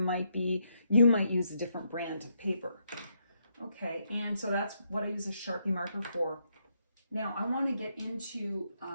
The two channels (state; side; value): inverted; both; correlation -0.77